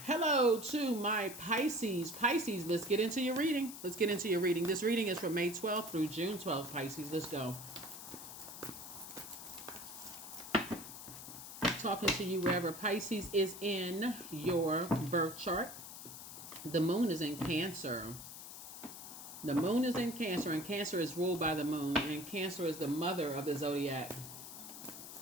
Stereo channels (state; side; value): noise; left; hiss, 11 dB below the sound